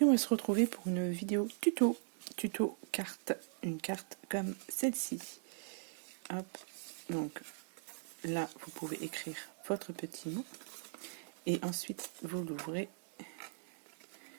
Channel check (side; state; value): left; silent; digital silence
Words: on va se retrouver pour une vidéo tuto carte, une carte comme celle-ci. Hop, donc là vous pouvez écrire votre petit mot et ensuite vous l'ouvrez